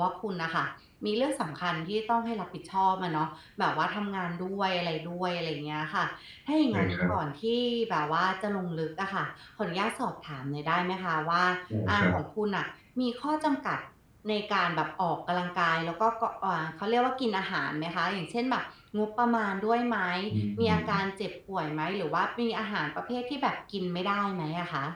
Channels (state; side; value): identical; both; correlation 1.00